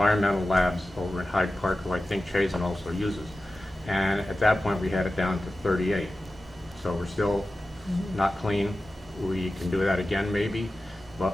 Labs over in Hyde Park, who I think Chazen also uses. And at that point, we had it down to 38. So we're still not clean. We can do that again, maybe,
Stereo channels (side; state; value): both; normal; correlation 0.94